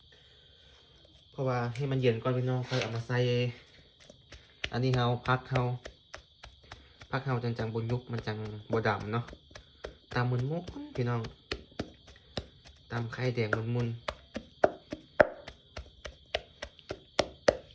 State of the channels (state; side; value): identical; both; correlation 1.00